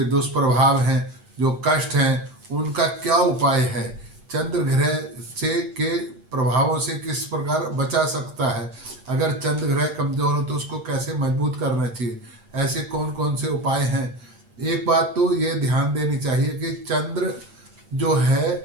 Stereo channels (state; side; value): late; left; 8.7 ms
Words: दुष्प्रभाव हैं, जो कष्ट हैं, उनका क्या उपाय है, चंद्र ग्रह से के प्रभावों से किस प्रकार बचा सकता है, अगर चंद्र ग्रह कमजोर हो तो उसको कैसे मजबूत करना चाहिए, ऐसे कौन कौन से उपाय हैं। एक बात तो ये ध्यान देनी चाहिए कि चंद्र जो है